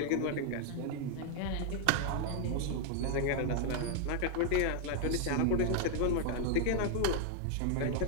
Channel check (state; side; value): different; both; correlation 0.00